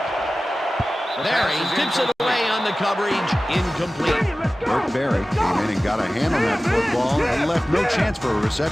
Barry tips it away on the coverage. Incomplete. Burke Barry came in and got a hand on that football and left no chance for a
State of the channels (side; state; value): both; normal; correlation 0.96